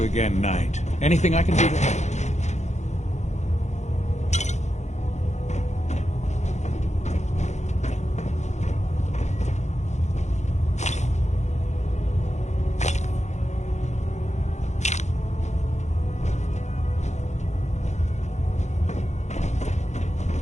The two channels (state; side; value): late; right; 0.33 ms